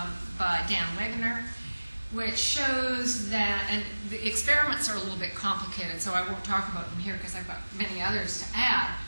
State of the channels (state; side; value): inverted; both; correlation -1.00